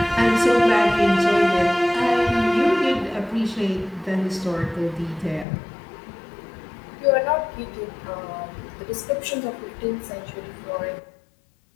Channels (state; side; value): drops out; right; at 5.5 s